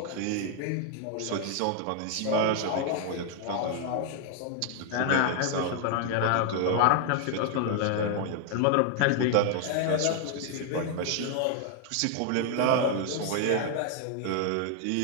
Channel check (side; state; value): both; different; correlation 0.00